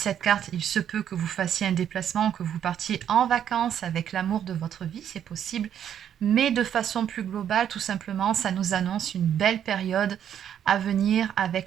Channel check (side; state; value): left; quieter; 9.5 dB